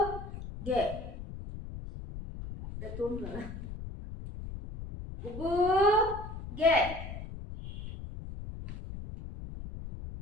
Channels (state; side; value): noise; left; rumble, 10 dB below the sound